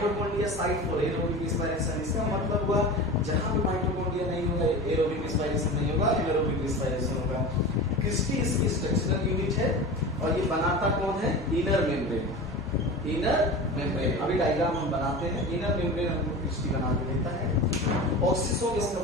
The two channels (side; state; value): both; normal; correlation 0.31